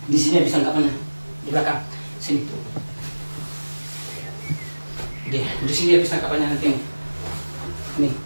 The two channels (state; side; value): inverted; both; correlation -1.00